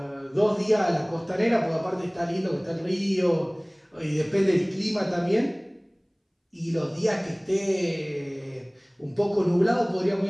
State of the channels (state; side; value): identical; both; correlation 1.00